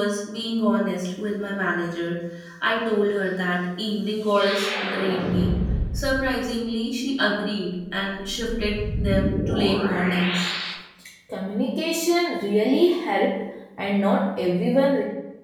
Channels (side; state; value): both; identical; correlation 1.00